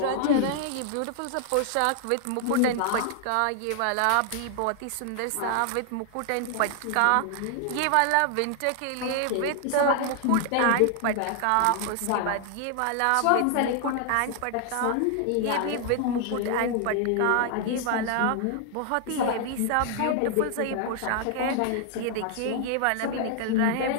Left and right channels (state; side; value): different; both; correlation 0.00